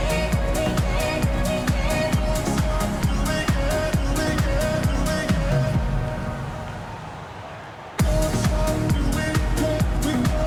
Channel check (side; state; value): both; identical; correlation 1.00